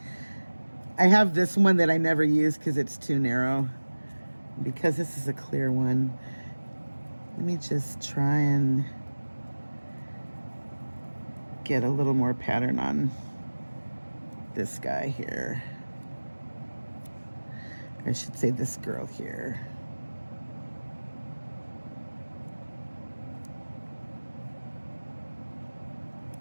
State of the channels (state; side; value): inverted; both; correlation -1.00